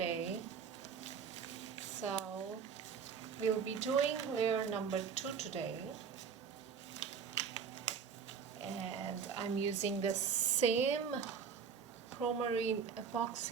So we'll be doing layer number 2 today, and I'm using the same Promarine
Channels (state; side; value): quieter; left; 6.6 dB